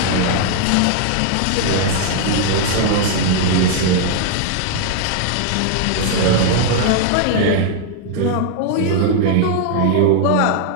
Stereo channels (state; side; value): different; both; correlation 0.00